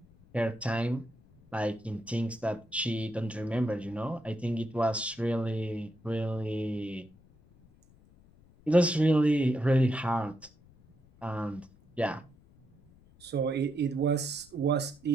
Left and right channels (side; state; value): left; noise; rumble, 27 dB below the sound